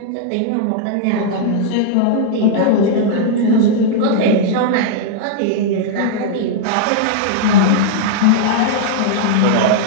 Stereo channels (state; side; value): different; both; correlation -0.01